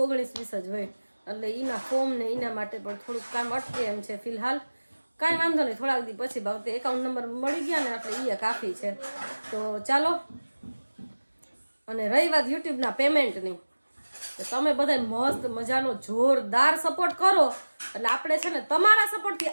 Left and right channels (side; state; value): both; inverted; correlation -1.00